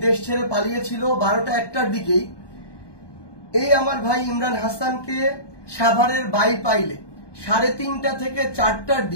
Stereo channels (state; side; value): late; right; 1.2 ms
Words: দেশ ছেড়ে পালিয়েছিল 12টা 1টার দিকেই, এই আমার ভাই ইমরান হাসানকে সাভারের বাইপাইলে 3:30টা থেকে 4টার